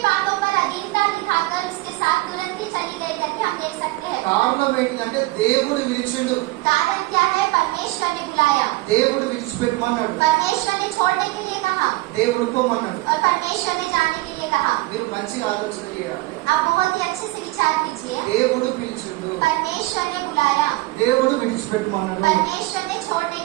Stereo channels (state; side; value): quieter; left; 20.2 dB